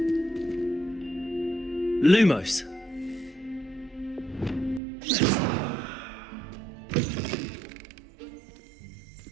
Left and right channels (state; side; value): drops out; left; at 4.8 s